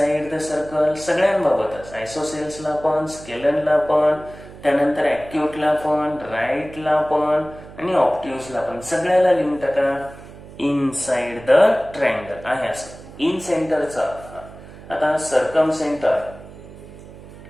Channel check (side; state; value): right; noise; hum, 17 dB below the sound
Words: द सर्कल सगळ्यांबाबतच, आयसोसेल्सला पण, स्केलनला पण, त्यानंतर ऍक्यूटला पण, राईटला पण आणि ऑप्ट्यूजला पण, सगळ्याला लिहून टाका इनसाइड द ट्रायंगल आहे असं. इन सेंटरचा आता सर्कम सेंटर.